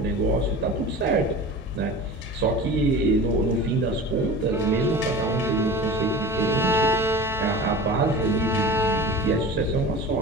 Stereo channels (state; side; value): normal; both; correlation 0.35